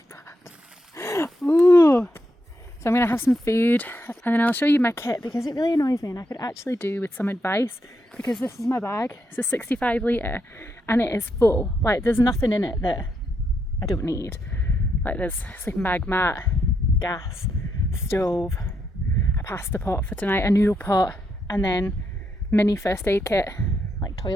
bad. Ooh. So I'm going to have some food and then I'll show you my kit because it really annoys me and I could actually do with some advice, because this is my bag. It's a 65 litre and it is full. Like, there's nothing in it that I don't need. Like, there's sleeping bag, mat, gas, stove, a pasta pot for tonight, a noodle pot, and then mini first aid kit, like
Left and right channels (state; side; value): normal; both; correlation 0.80